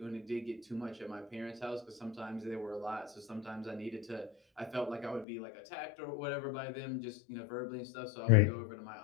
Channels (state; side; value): drops out; right; at 5.2 s